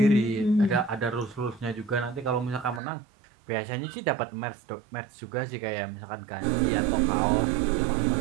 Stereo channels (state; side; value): drops out; left; at 2.8 s